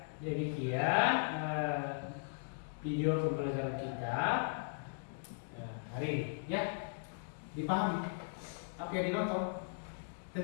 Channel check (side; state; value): right; silent; digital silence